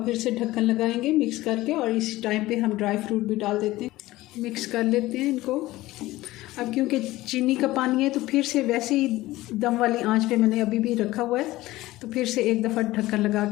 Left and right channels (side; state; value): right; quieter; 17.6 dB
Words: फिर से ढक्कन लगाएंगे मिक्स करके, और इस टाइम पे हम ड्राई फ्रूट भी डाल देते हैं। मिक्स कर लेते हैं इनको। अब क्योंकि चीनी का पानी है तो फिर से वैसे ही दम वाली आंच पे मैंने अभी भी रखा हुआ है, तो फिर से एक दफ़ा ढक्कन लगा